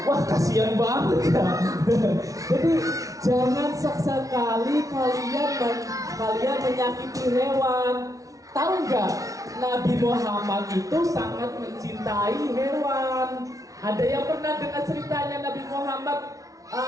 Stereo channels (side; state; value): left; late; 0.17 ms